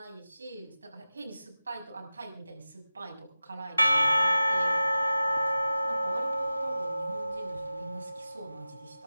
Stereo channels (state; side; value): inverted; both; correlation -0.94